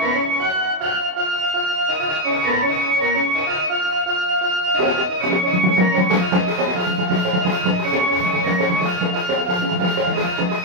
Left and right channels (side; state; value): left; late; 28 ms